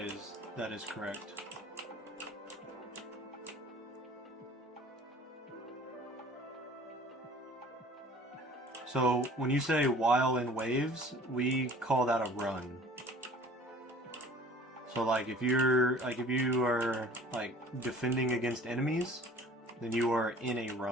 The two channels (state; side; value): normal; both; correlation 0.49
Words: correct. So when you say while in waves, we call that a run. So like if you are like defending against enemies, then you are in a